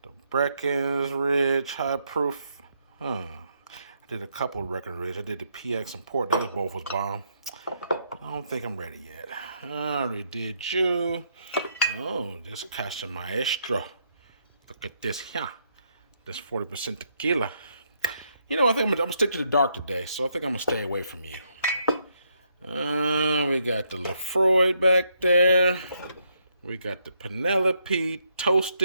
The Breckenridge High Proof. I did a couple of Breckenridge. I did the PX and Port. Those both was bomb. I don't think I'm ready yet. I already did you. Oh, this Casa Maestro. Look at this here. This 40% tequila. You know, I think I'm gonna stick to the dark today, so I think I'm gonna stay away from you. We got the Lefroy back there. We got the Penelope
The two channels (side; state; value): both; inverted; correlation -0.75